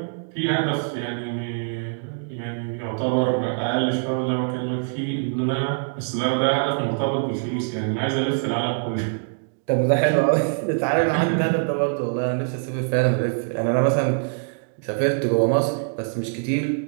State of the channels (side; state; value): left; silent; digital silence